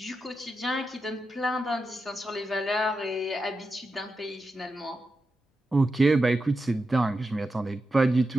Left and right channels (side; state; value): both; normal; correlation 0.89